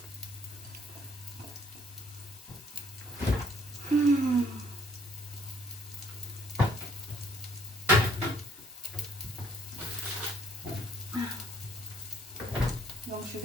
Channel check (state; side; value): normal; both; correlation 0.63